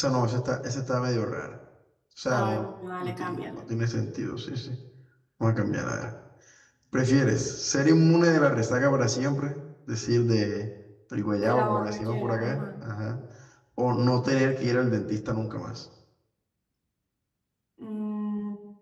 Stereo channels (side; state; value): both; identical; correlation 1.00